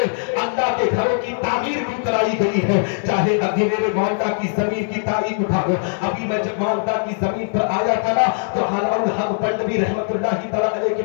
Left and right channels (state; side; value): silent; right; 65 dB below the other